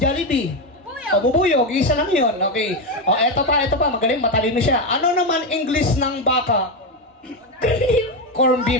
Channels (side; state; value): both; normal; correlation 0.10